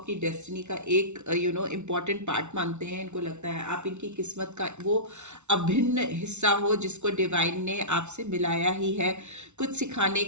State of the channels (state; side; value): late; left; 0.82 ms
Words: डेस्टिनी का एक इम्पॉर्टेंट पार्ट मानते हैं, इनको लगता है आप इनकी किस्मत का वो अभिन्न हिस्सा हो जिसको डिवाइन ने आपसे मिलाया ही है, कुछ सिखाने